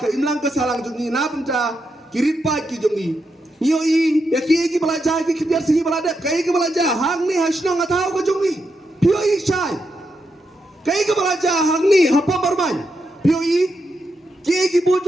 imlang ka salang jungi na benca kirit pai ki jungi yo i ya ki belajar ki kibiar singi belajar kai ki belajar hang ni hasno ngatau ka jungi pio i shai kai ki belajar hang ni hapa barman pio i ki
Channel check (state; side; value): normal; both; correlation 0.84